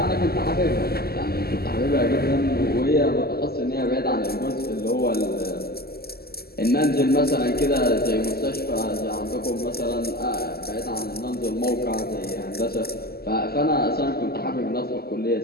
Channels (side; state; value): right; late; 0.45 ms